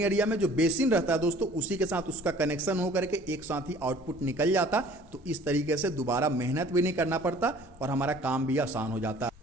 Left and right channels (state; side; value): normal; both; correlation 0.51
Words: एरिया में जो बेसिन रहता है दोस्तों उसी के साथ उसका कनेक्शन हो करके एक साथ ही आउटपुट निकल जाता। तो इस तरीके से दोबारा मेहनत भी नहीं करना पड़ता और हमारा काम भी आसान हो जाता।